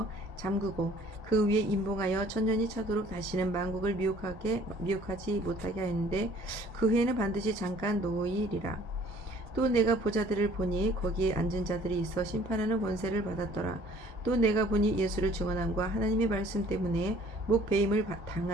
잠그고 그 위에 임봉하여 1000년이 차도록 다시는 만국을 미혹하지 못하게 하였는데 그 후에는 반드시 잠깐 놓이리라. 또 내가 보자들을 보니 거기에 앉은 자들이 있어 심판하는 권세를 받았더라. 또 내가 보니 예수를 증언함과 하나님의 말씀 때문에 목배임을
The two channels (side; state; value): both; normal; correlation 0.55